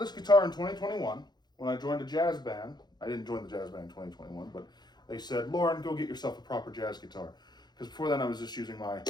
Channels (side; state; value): right; late; 0.20 ms